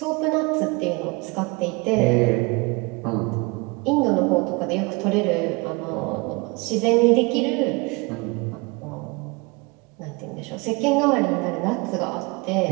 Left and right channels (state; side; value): quieter; left; 27.5 dB